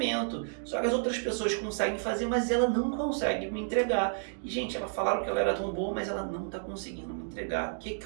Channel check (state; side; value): silent; left; digital silence